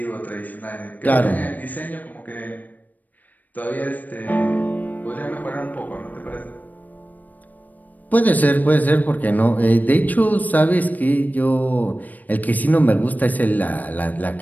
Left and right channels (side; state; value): right; late; 0.081 ms